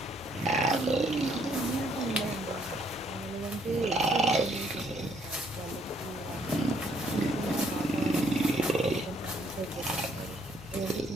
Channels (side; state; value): both; normal; correlation 0.68